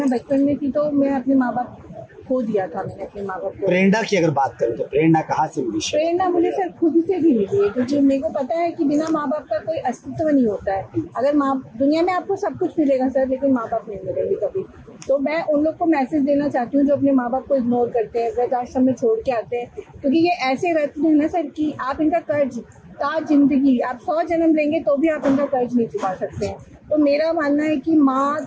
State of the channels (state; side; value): identical; both; correlation 1.00